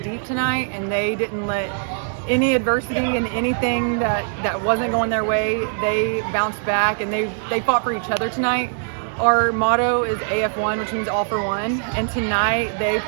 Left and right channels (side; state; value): left; silent; digital silence